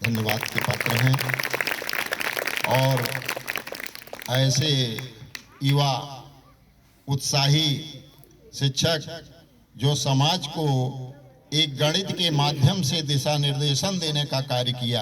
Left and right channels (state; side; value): identical; both; correlation 1.00